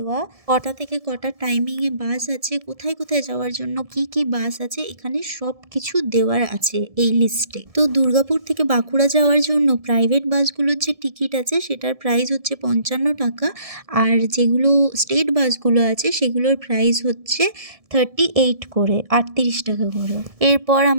কটা থেকে কটা টাইমিংয়ে বাস আছে, কোথায় কোথায় যাওয়ার জন্য কি কি বাস আছে, এখানে সব কিছু দেওয়ার আছে এই লিস্টে। তো দুর্গাপুর থেকে বাঁকুড়া যাওয়ার জন্য প্রাইভেট বাসগুলোর যে টিকিট আছে সেটার প্রাইস হচ্ছে 55 টাকা, আর যেগুলো স্টেট বাসগুলো আছে সেগুলোর প্রাইস হচ্ছে 38 করে, 38 টাকা করে। এরপর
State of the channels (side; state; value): left; late; 1.7 ms